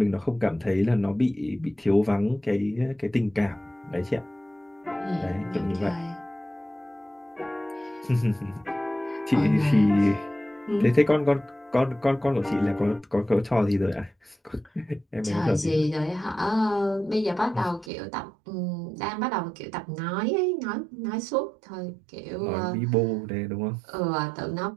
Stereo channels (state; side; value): drops out; left; at 17.9 s